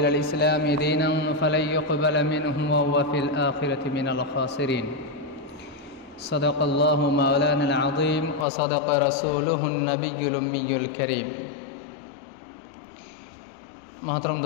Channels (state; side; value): drops out; right; at 8.5 s